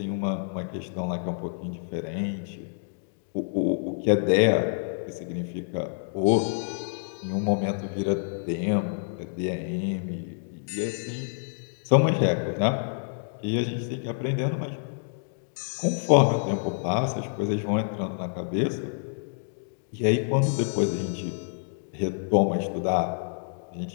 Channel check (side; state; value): right; silent; digital silence